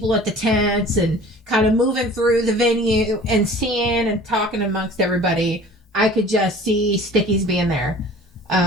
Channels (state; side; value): normal; both; correlation 0.46